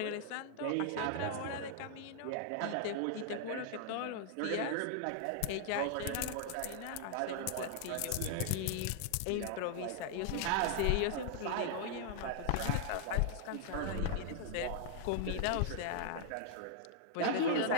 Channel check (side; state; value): both; different; correlation -0.01